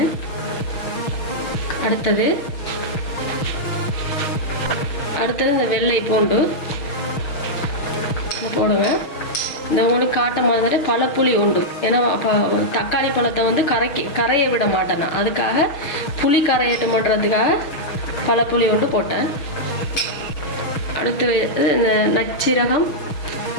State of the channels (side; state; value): right; late; 6.3 ms